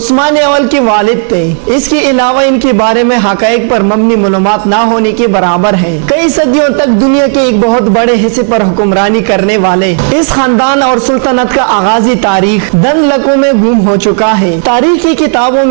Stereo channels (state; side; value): silent; left; 62 dB below the other